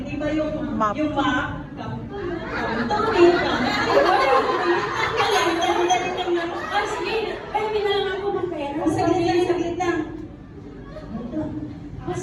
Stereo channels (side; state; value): both; identical; correlation 1.00